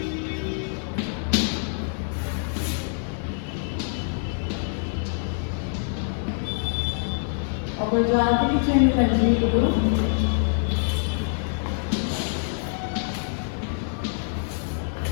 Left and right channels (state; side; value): silent; right; digital silence